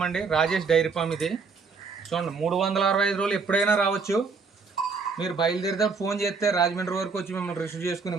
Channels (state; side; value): quieter; left; 4.8 dB